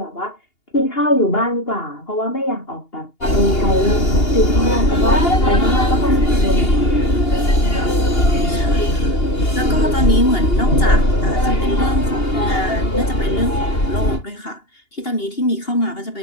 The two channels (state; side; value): late; right; 2.8 ms